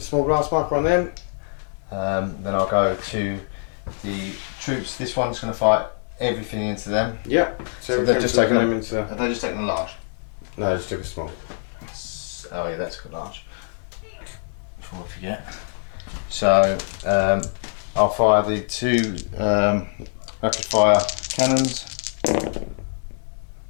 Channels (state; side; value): silent; right; 63 dB below the other